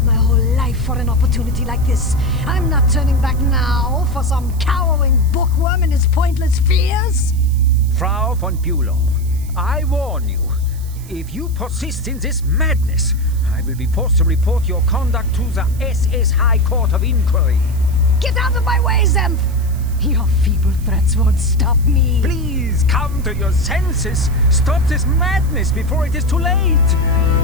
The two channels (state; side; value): noise; right; hiss, 21 dB below the sound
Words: my whole life for an opportunity like this. I'm not turning back now for some cowering bookworm and his pointless fears. Frau von Bülow, I warn you. If you persist in this madness, I will be forced to report your conduct to the SS High Court of Inquiry. Get out of my way, Zemph! Your feeble threats won't stop me. Please come to your senses. Stop this madness before it is too late.